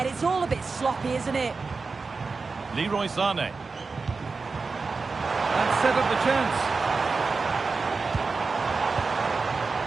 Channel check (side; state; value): left; quieter; 4.3 dB